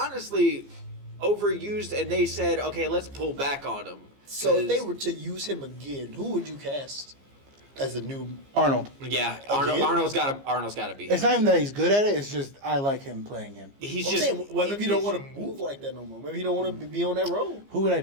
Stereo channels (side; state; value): left; late; 15 ms